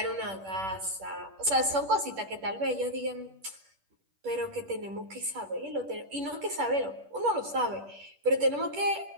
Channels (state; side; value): late; left; 10 ms